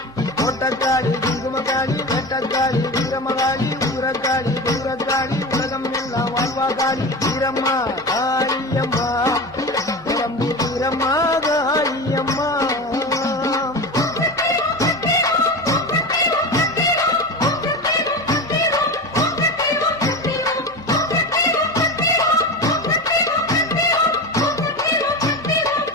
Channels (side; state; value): right; noise; hum, 25 dB below the sound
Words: கோட்டக்காளி குங்குமக்காளி வெட்டக்காளி வீரமகாளி ஊரக்காளி தூரக்காளி உலகம் எல்லாம் வாழ்வாகாளி வீரம்மா காளியம்மா பெரம்பூர் வீரம்மா காளியம்மா